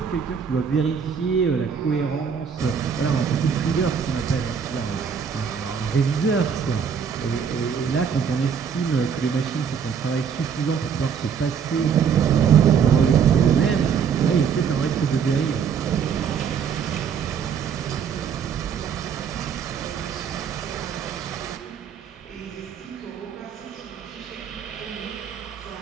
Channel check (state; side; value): quieter; left; 7.0 dB